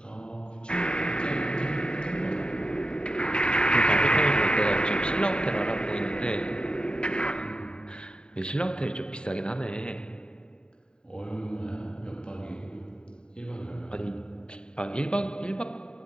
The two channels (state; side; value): late; right; 0.049 ms